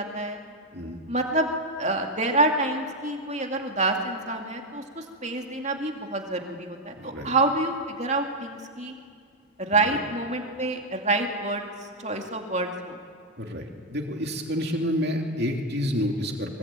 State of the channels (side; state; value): both; normal; correlation 0.04